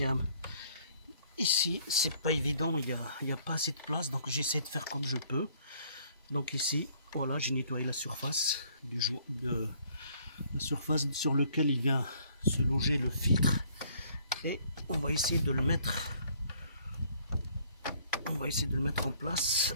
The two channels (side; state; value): both; inverted; correlation -0.61